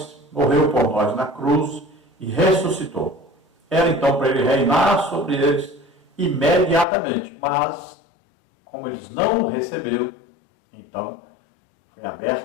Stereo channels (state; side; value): drops out; right; at 6.9 s